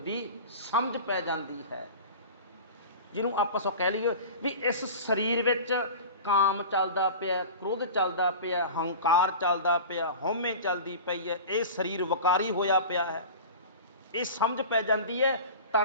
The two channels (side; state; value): both; inverted; correlation -0.34